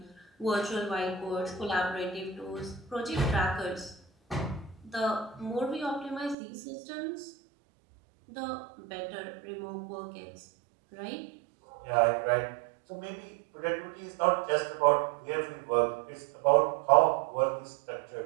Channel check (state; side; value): drops out; left; at 6.4 s